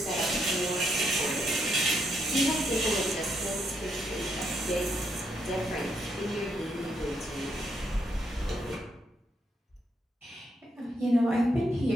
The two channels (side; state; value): both; normal; correlation 0.77